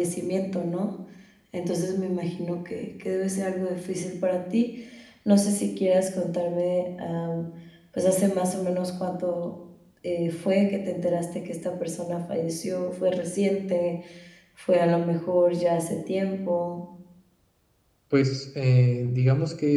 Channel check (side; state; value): both; identical; correlation 1.00